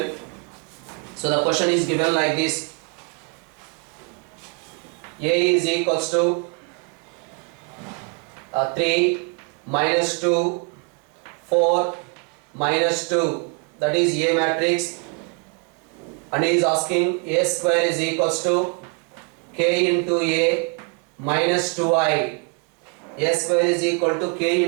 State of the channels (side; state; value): left; quieter; 33.0 dB